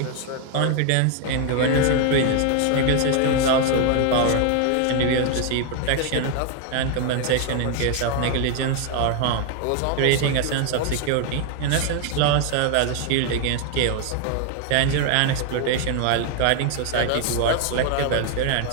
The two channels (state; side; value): different; both; correlation 0.00